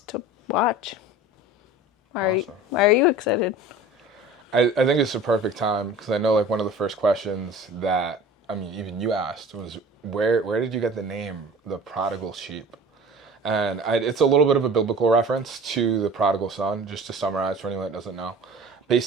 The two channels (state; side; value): normal; both; correlation 0.41